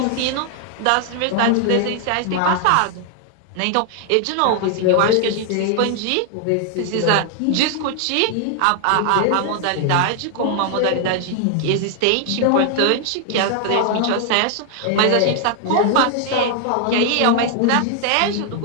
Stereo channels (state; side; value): different; both; correlation 0.00